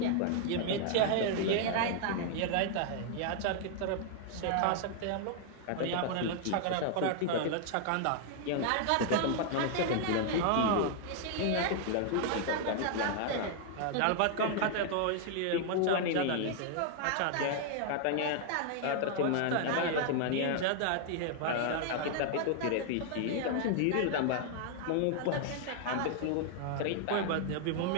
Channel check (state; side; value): different; both; correlation 0.00